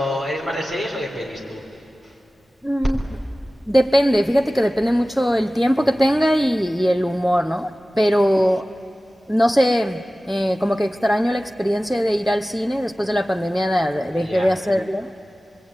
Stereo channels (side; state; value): both; normal; correlation 0.97